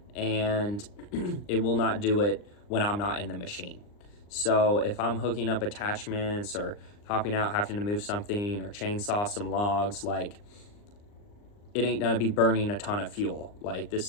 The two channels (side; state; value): right; late; 39 ms